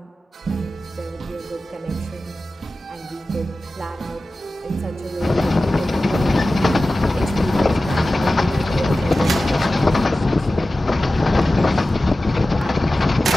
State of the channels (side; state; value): both; normal; correlation 0.95